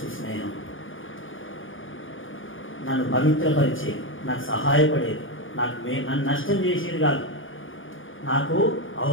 స్నేహం నన్ను పవిత్రపరిచేది, నాకు సహాయపడేది, నన్ను నష్టం చేసేది కాదు, నాకు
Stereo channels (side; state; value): right; late; 0.58 ms